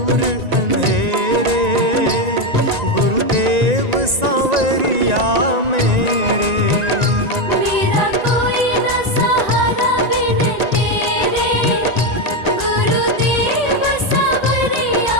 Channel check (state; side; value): late; left; 1.9 ms